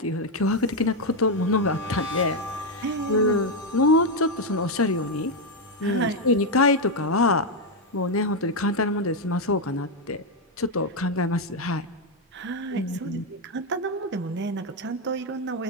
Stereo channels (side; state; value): both; normal; correlation 0.04